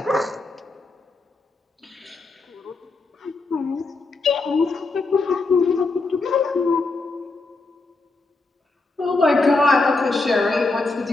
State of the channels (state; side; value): quieter; right; 3.5 dB